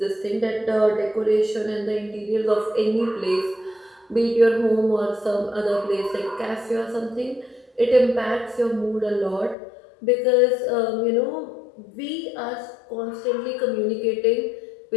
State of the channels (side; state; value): right; drops out; at 9.6 s